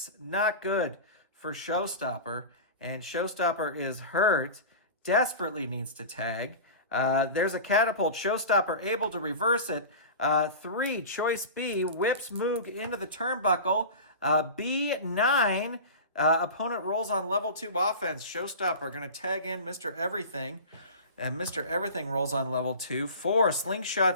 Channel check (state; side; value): inverted; both; correlation -0.32